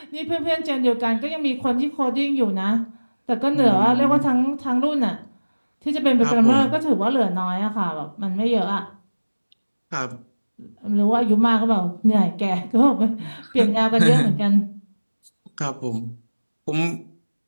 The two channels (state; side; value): inverted; both; correlation -1.00